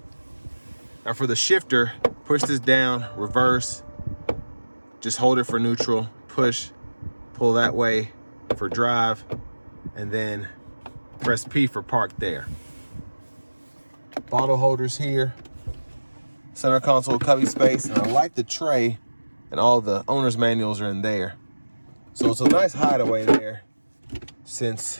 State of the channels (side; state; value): both; inverted; correlation -1.00